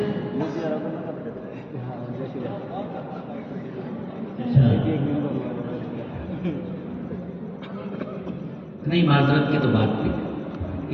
نہیں معذرت کی تو بات تھی،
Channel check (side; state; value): both; identical; correlation 1.00